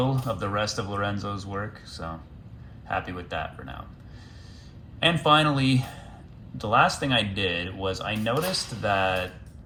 of the rest of Lorenzo's work, so happy with that for now. And finally, the last thing I did was I noticed that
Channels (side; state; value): both; identical; correlation 1.00